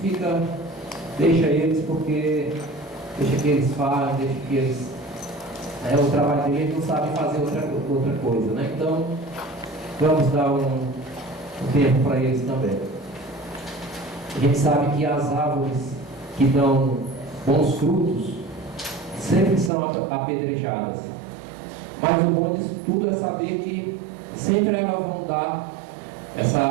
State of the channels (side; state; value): left; drops out; at 19.7 s